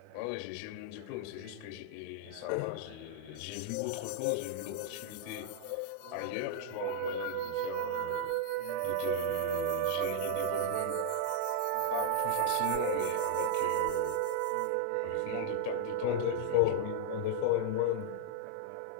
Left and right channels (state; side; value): different; both; correlation -0.01